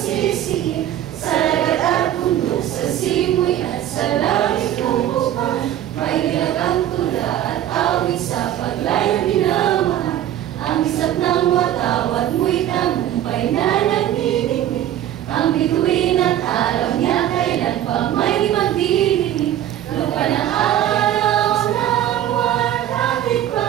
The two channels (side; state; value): left; quieter; 11.8 dB